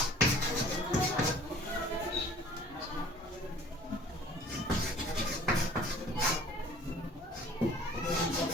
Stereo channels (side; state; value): both; normal; correlation 0.50